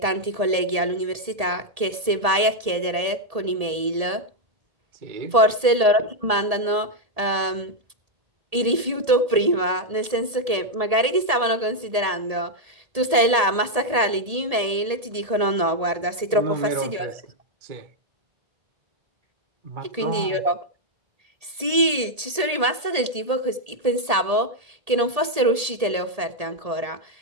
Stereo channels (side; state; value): left; late; 1.8 ms